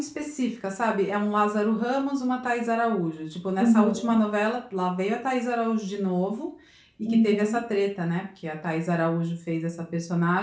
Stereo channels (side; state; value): both; identical; correlation 1.00